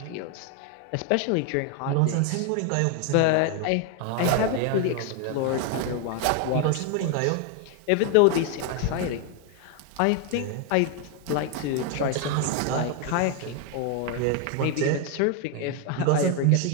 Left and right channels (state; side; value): different; both; correlation 0.01